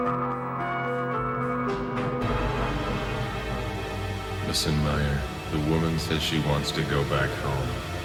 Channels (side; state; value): both; identical; correlation 1.00